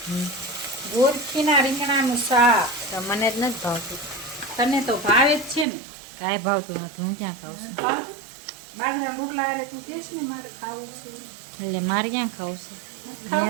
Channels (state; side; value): drops out; left; at 5.7 s